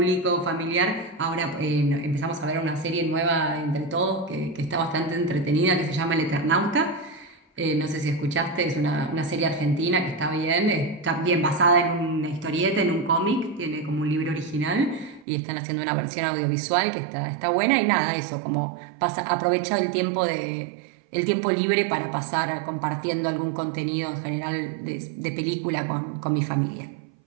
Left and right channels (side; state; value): left; drops out; at 15.2 s